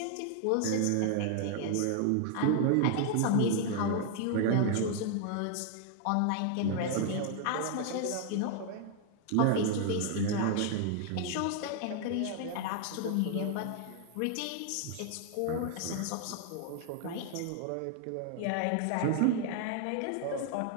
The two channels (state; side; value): different; both; correlation 0.00